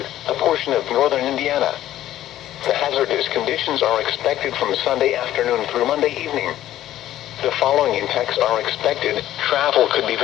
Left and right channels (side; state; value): right; quieter; 13.1 dB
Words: a portion of northern Indiana. The hazardous conditions are expected from Sunday afternoon through Monday evening. The following impacts are expected. Travel could be